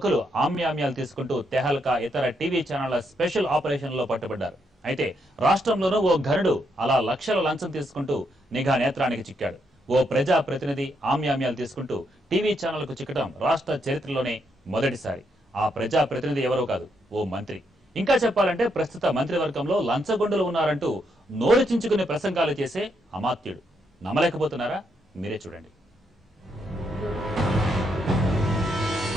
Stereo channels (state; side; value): normal; both; correlation 0.78